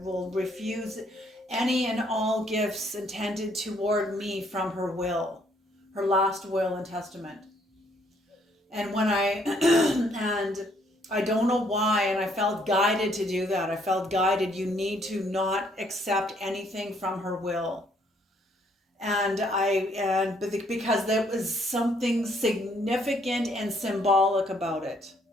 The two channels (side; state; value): both; normal; correlation 0.67